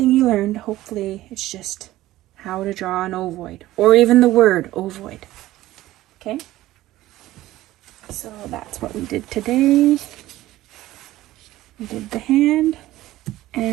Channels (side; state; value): left; quieter; 15.9 dB